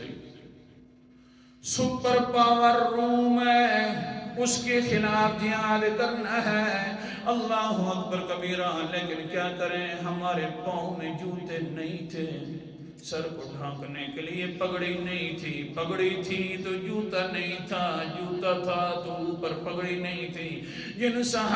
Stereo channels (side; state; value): both; identical; correlation 1.00